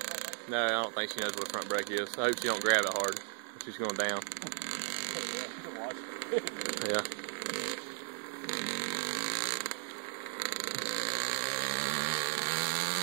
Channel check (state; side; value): silent; left; 54 dB below the other